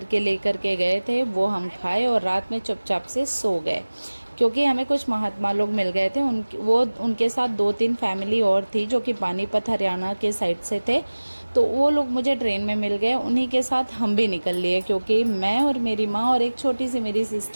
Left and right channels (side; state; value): both; inverted; correlation -1.00